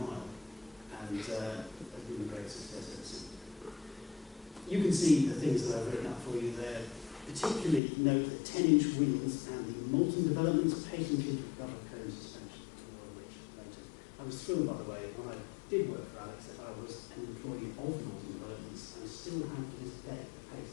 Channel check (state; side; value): drops out; right; at 7.8 s